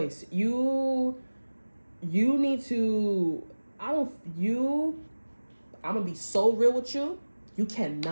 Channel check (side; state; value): both; inverted; correlation -1.00